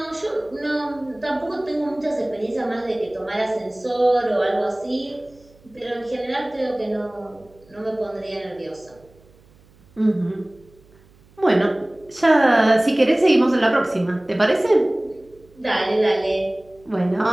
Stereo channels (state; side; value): noise; right; hum, 29 dB below the sound